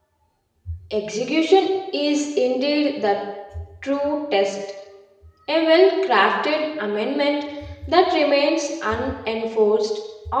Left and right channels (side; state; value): both; identical; correlation 1.00